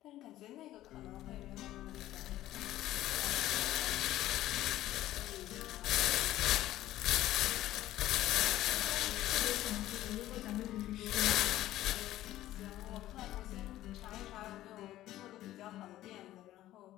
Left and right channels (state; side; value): quieter; right; 14.5 dB